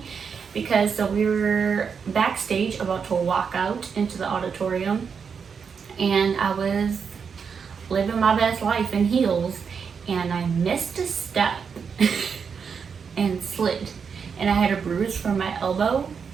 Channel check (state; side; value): quieter; left; 6.2 dB